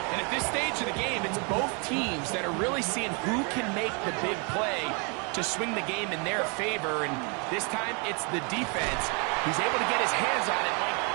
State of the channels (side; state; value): left; quieter; 34.2 dB